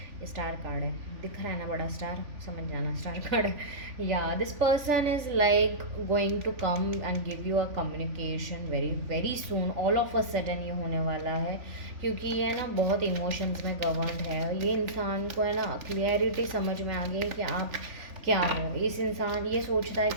star card है, दिख रहा है ना बड़ा स्टार, समझ जाना स्टार कार्ड है। Yeah this person is like going to come and give you a communication very very soon, all of a sudden ये होने वाला है, क्योंकि ये ना बहुत इमोशंस में गवर्नड है। ये इंसान को है ना क्लियरिटी समझ में आ गई है कि आप क्या हो। इस इंसान ये सोचता है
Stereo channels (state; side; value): late; left; 3.5 ms